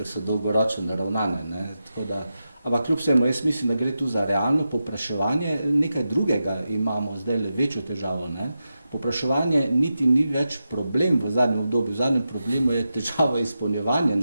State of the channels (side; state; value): both; inverted; correlation -0.90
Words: so dolgoročno naravnane. Ampak kljub vsemu, jaz mislim, da gre tu za realno povpraševanje. Nekaj drugega imamo zdaj le večjo težavo. Povpraševanje niti ni več problem v zadnjem obdobju. V zadnjem problemu je težava izpolnjevanja